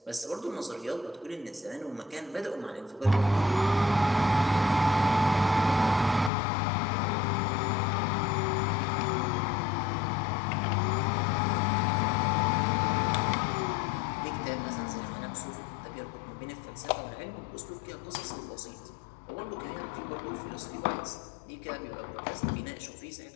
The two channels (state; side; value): drops out; right; at 6.3 s